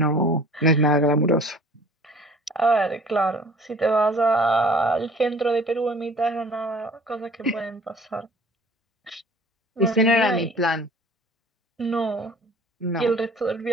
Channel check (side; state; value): both; normal; correlation 0.49